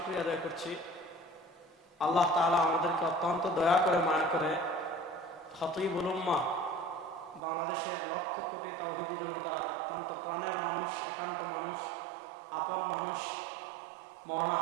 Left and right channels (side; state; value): left; drops out; at 7.4 s